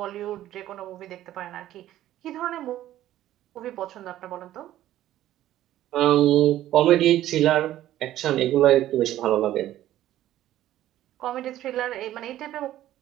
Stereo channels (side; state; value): left; quieter; 13.4 dB